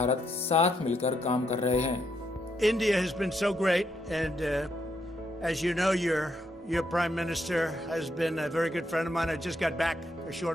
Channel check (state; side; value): normal; both; correlation 0.77